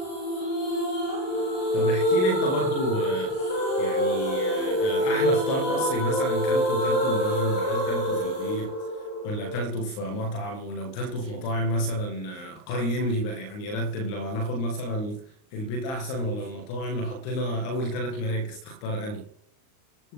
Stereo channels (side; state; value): right; late; 38 ms